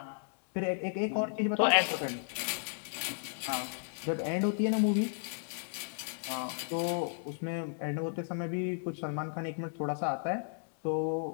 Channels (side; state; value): right; silent; digital silence